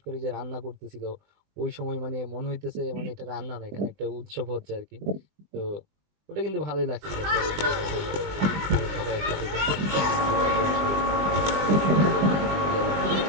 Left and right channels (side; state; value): left; late; 20 ms